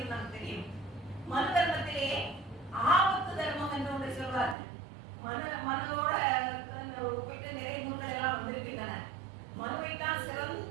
நமக்கு தெரியும். மனு தர்மத்திலே ஆபத்து தர்மம் என்று ஒன்று சொல்வார்கள். மனோட ஒப்பிட்டு நிறைய நூல்கள் எல்லாம் வந்திருக்கின்றன. மனுவைத்தான்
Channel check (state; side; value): drops out; left; at 4.5 s